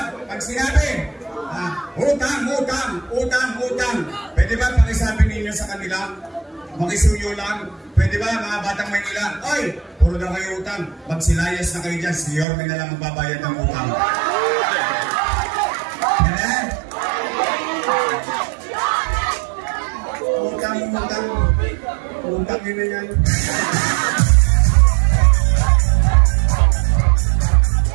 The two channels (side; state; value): left; drops out; at 12.5 s